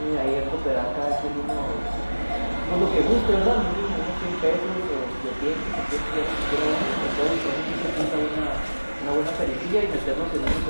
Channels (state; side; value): inverted; both; correlation -1.00